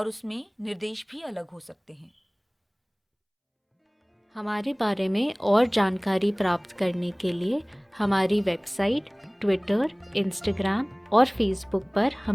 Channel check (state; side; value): identical; both; correlation 1.00